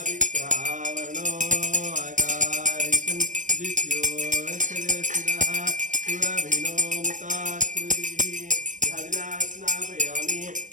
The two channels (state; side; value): late; left; 0.37 ms